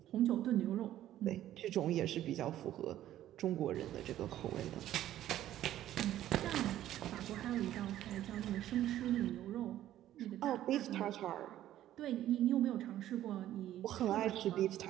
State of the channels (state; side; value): quieter; left; 12.8 dB